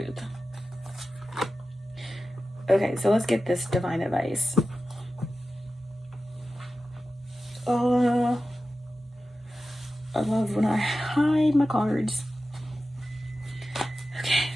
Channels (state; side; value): normal; both; correlation 0.94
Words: Okay, so let's get this divine advice. I love when I hide my cards. Okay.